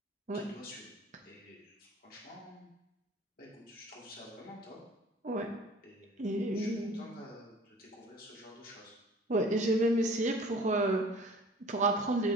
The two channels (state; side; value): normal; both; correlation 0.48